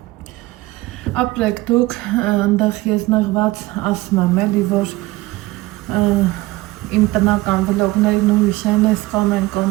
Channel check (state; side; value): quieter; left; 19.4 dB